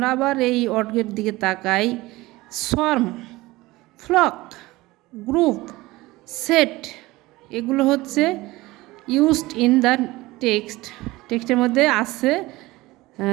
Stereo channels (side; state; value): left; quieter; 19.7 dB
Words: আবার এই ওয়ার্ডের দিকে তাকাই। সোয়ার্ম, ফ্লক, গ্রুপ, সেট, এগুলো হচ্ছে ইউজড ইন দ্য টেক্সটের মধ্যে আছে।